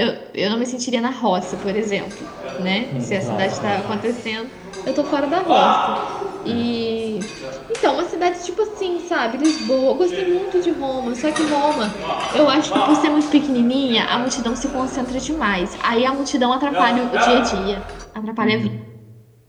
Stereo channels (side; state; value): both; identical; correlation 1.00